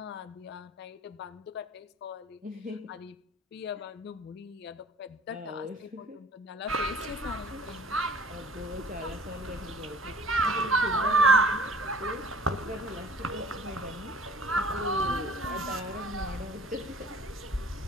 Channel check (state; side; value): normal; both; correlation 0.49